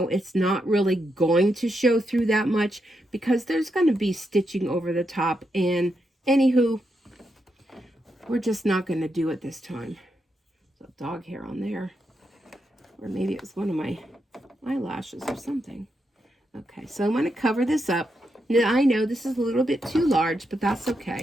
it's not really going to show through that much because there's going to be stitching over the top. And anywho, we're just not going to do it this time. There's a dog hair on there. Or maybe it was one of my eyelashes or something. Okay, so I'm going to cover this up. Now, I know this is a little bit too large, but that's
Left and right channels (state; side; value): normal; both; correlation 0.83